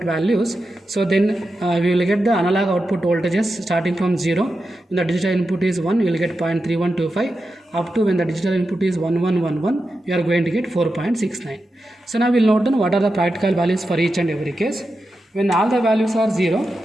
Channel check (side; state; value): both; normal; correlation 0.90